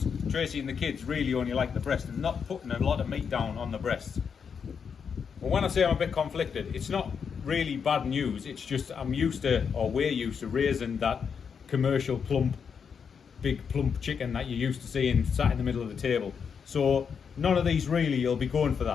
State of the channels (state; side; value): quieter; right; 6.6 dB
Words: Tracy and the kids really only like the breast and not putting a lot of meat down on the breasts. Well, when I say I'm a bit conflicted, it's not really bad news, it's just I'm used to, or we're used to, raising that commercial plump, big plump chicken that you're used to seeing sat in the middle of the table. So none of these really will be going for